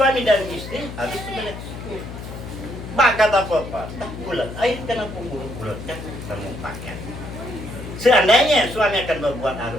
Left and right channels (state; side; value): noise; left; hum, 10 dB below the sound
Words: dan istri harus sebelah. Bakat apa-apa, tak bulat air kenapa bulat kan kamu pakai. Seandainya suami akan berbuat